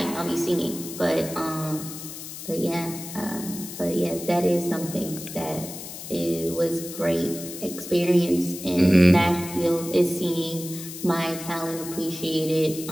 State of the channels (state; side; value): noise; left; hiss, 11 dB below the sound